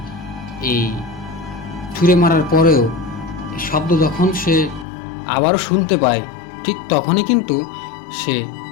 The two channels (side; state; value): right; drops out; at 4.9 s